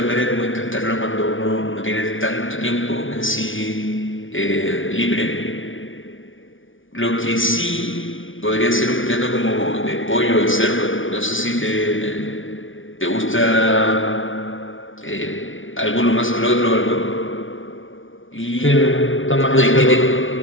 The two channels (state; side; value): late; right; 0.57 ms